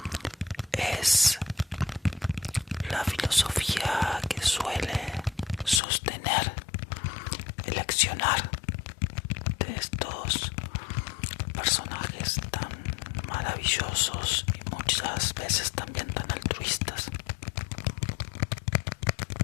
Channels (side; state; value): right; drops out; at 5.8 s